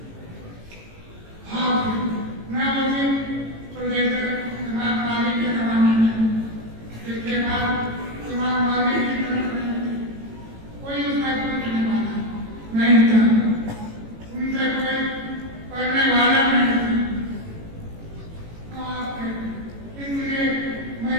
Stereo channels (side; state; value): left; late; 18 ms